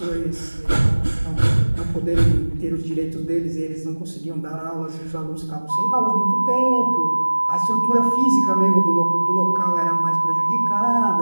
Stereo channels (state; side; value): inverted; both; correlation -1.00